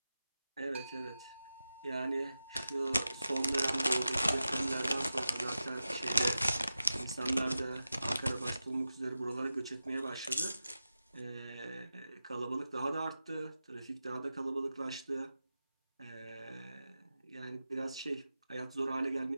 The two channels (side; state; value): both; inverted; correlation -0.93